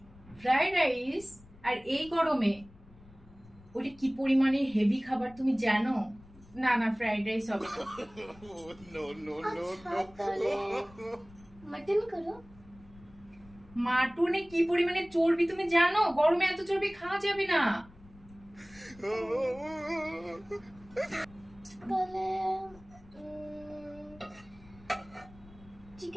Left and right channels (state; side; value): noise; left; rumble, 23 dB below the sound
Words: Fried rice? আর এই গরমে? ওটা কি পরিমাণে হেভি খাবার তুমি জানো? না না, ফ্রাইড রাইস হবে না। আচ্ছা তাহলে মাটন করো। মাটনে কি পরিমাণে চর্বি তুমি জানো? গরমে এত চর্বি খাওয়া যাবে না। তাহলে